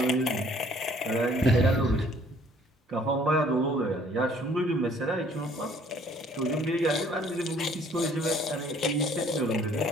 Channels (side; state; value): both; normal; correlation 0.59